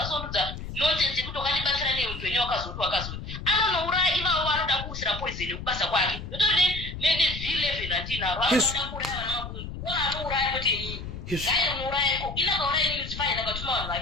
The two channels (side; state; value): left; noise; rumble, 9 dB below the sound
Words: nonsense yekuti wakandibatsira neupenyu wakazoti anonouraya ivavo vanoda kuusira poison yekubasa kwake ndotori V11 handinaro anoda kuuraya vana mabundu ona anouraya kuti gairi muurayeko inakauraya inini fine akatuma vanhu